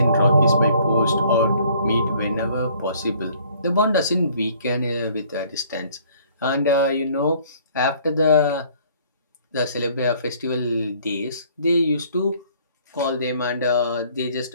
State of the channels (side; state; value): both; inverted; correlation -0.58